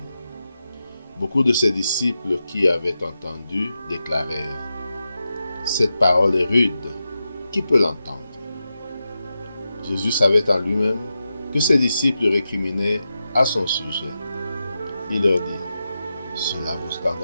Beaucoup de ses disciples qui avaient entendu déclarèrent : « Cette parole est rude, qui peut l'entendre ?» Jésus savait en lui-même que ses disciples récriminaient à son sujet. Il leur dit : « Cela vous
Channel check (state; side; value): inverted; both; correlation -0.90